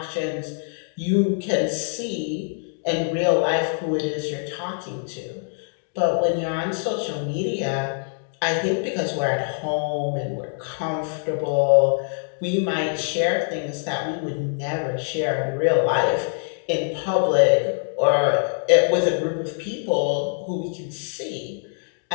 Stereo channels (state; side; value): silent; right; 63 dB below the other